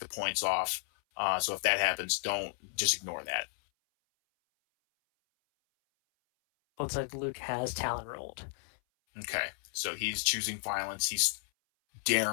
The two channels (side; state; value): right; silent; 56 dB below the other